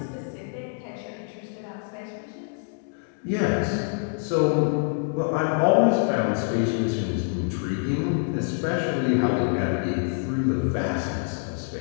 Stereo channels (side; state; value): right; silent; 61 dB below the other